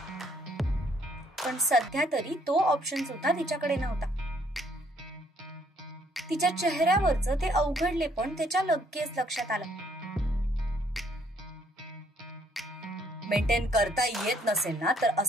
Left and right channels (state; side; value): normal; both; correlation 0.66